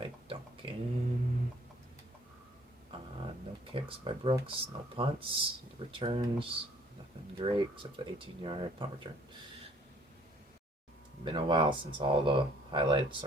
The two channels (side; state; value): both; normal; correlation 0.59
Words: Duncan. No kicks by Brooks. No punts. The returns. Nothing great except the 18-yard punt return. Been a while since all the highlights